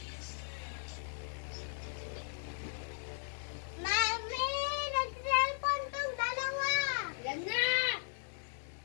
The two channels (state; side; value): silent; right; digital silence